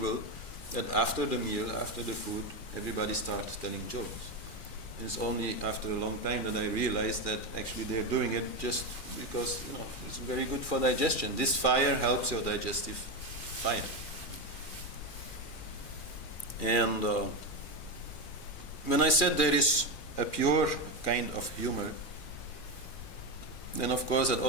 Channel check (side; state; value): right; late; 2.4 ms